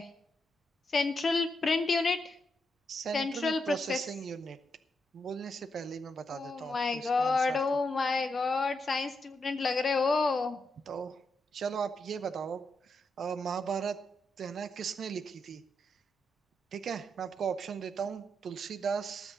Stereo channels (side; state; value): both; normal; correlation 0.82